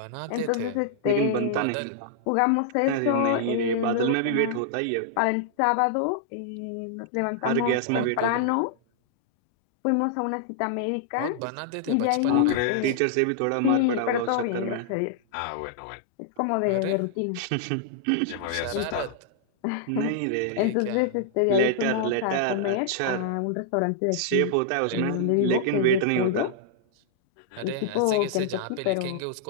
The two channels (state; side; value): different; both; correlation -0.01